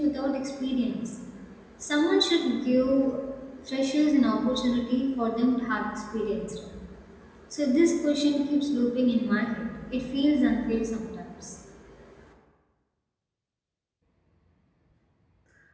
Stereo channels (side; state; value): both; identical; correlation 1.00